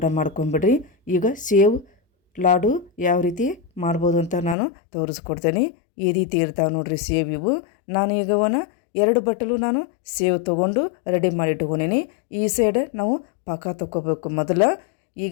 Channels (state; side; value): drops out; right; at 4.5 s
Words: ಮಾಡ್ಕೊಂಬಿಡ್ರಿ. ಈಗ ಸೇವ್ ಲಾಡು ಯಾವ ರೀತಿ ಮಾಡ್ಬೋದು ಅಂತ ನಾನು ತೋರಿಸ್ಕೊಡ್ತೇನೆ. ಈ ರೀತಿ ಇರ್ತಾವೆ ನೋಡ್ರಿ ಸೇವ್ ಇವು. ನಾನು ಈಗ 2 ಬಟ್ಟಲು ನಾನು ಸೇವ್ ತೊಗೊಂಡು ರೆಡಿ ಮಾಡಿ ಇಟ್ಕೊಂಡೀನಿ. ಈ ಸೈಡ್ ನಾವು ಪಾಕ ತೊಗೋಬೇಕು ಮೊದಲು.